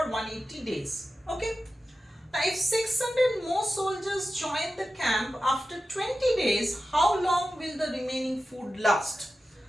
180 days. Okay. Now if 600 more soldiers join the camp after 20 days, how long will the remaining food last?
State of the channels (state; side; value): normal; both; correlation 0.93